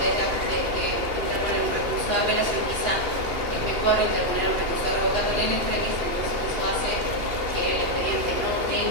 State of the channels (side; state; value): left; late; 2.8 ms